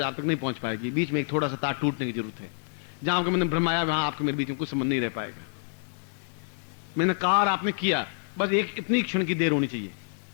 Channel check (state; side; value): silent; right; digital silence